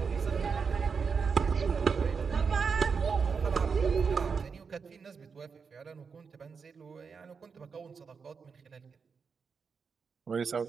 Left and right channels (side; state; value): left; quieter; 5.6 dB